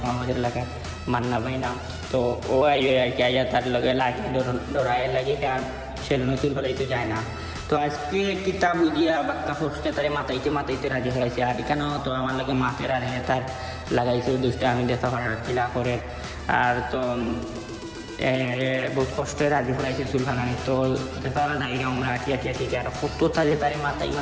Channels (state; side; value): identical; both; correlation 1.00